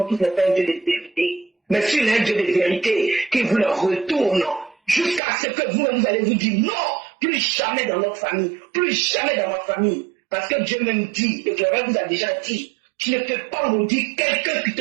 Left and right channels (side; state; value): left; drops out; at 5.2 s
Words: tous n'est pas un Dieu de vérité. Mais s'il est un Dieu de vérité, qu'il vous le retourne. Jusqu'à ce que vous allez vous dire non, plus jamais dans notre famille. Plus jamais dans ma famille. Parce que Dieu même dit, et que vous a déjà dit, tu ne peux pas maudire quelqu'un qui